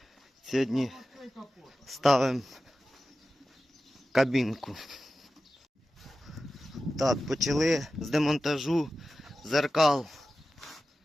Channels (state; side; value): normal; both; correlation 0.94